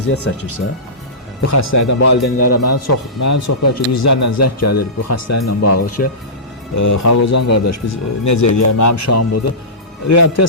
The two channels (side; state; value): both; normal; correlation -0.19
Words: çəkirsə, bu xəstəlikdən valideynlərə mənim çox bəlkə yüzlərlə zəng gəlir bu xəstəliklə bağlı ki, Xalqozan qardaş, biz necə eləyək, mənim uşağım budur.